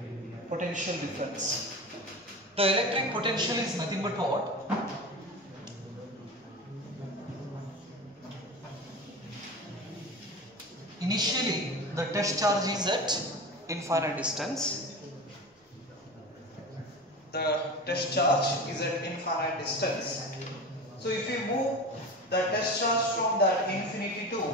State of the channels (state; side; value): normal; both; correlation 0.29